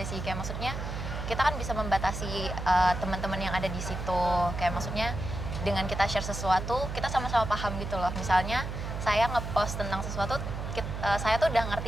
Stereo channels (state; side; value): noise; right; hum, 5 dB below the sound